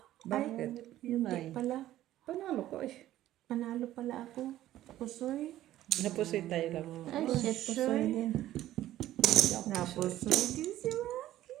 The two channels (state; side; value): quieter; left; 13.9 dB